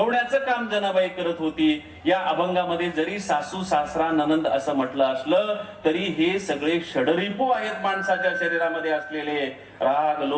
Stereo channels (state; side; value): identical; both; correlation 1.00